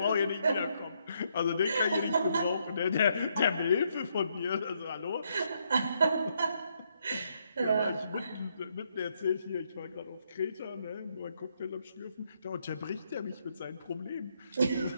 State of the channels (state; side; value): inverted; both; correlation -0.75